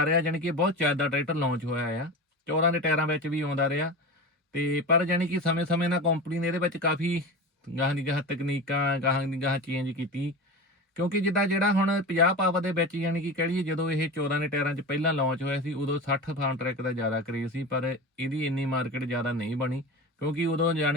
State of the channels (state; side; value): normal; both; correlation 0.28